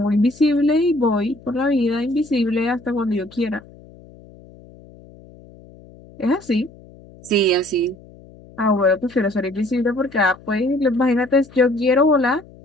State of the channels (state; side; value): noise; left; hum, 23 dB below the sound